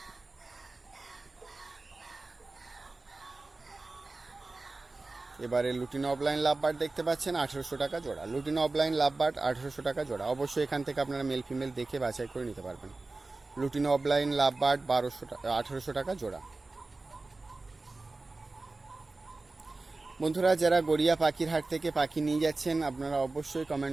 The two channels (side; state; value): left; quieter; 3.4 dB